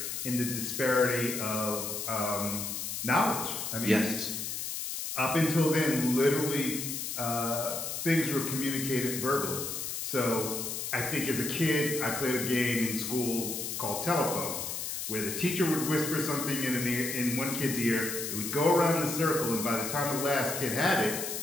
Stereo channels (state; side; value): noise; left; hiss, 4 dB below the sound